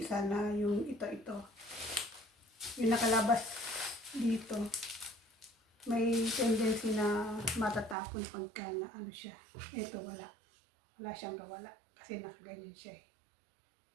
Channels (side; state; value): left; drops out; at 8.0 s